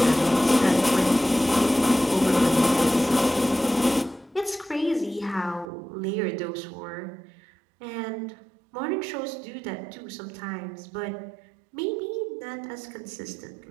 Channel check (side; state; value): left; drops out; at 5.7 s